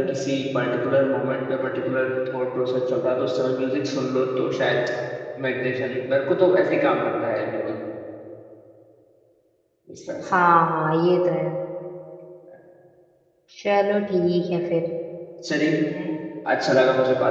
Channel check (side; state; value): both; identical; correlation 1.00